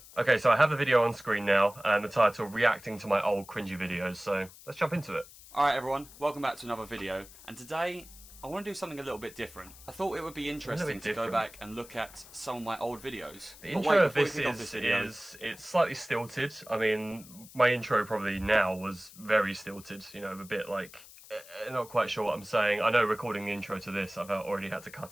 Okay, so I have the video on screen now, and the title, Reacting to My Old Cringy Videos, so let's jump into it. Alright everyone, welcome back to another video, and today I want to do something a little bit different. I thought it would be interesting to go back and look at some of my old videos. The intro of this is it's slightly stilted. I mean, my intro probably now was very stilted, you know, a bit like, not quite sure what I'm saying. I know recording the intro to this, I've already had to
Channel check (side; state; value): left; noise; hiss, 19 dB below the sound